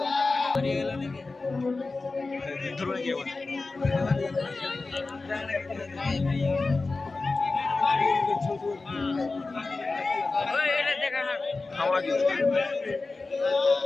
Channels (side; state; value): right; quieter; 3.7 dB